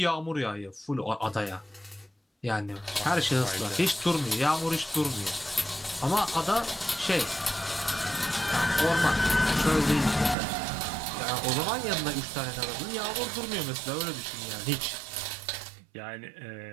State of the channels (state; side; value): drops out; left; at 10.4 s